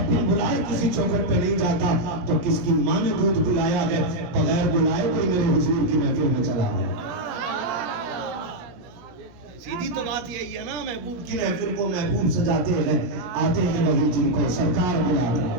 بن بلائے کسی چوکھٹ پہ نہیں جاتا تو کس کی ماں نے دودھ پلایا ہے بغیر بلائے کوئی میرے حضور کی محفل میں چلا ہے. سیدھی تو بات یہی ہے نا, محبوب کی محفل کو محبوب سجاتے ہیں, آتے ہیں وہی جن کو سرکار بلاتا ہے.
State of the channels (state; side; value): late; left; 17 ms